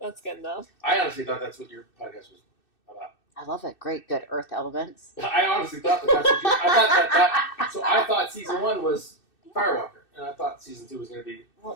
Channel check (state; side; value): late; right; 2.6 ms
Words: good, though. I honestly thought that's what your podcast was about. I love it. Great, good earth elements. I honestly thought that's what I thought season 1 was Firewalker, and I thought season 2 was going to be.